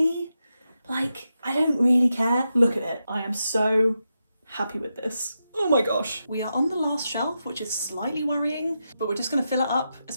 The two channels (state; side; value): inverted; both; correlation -0.87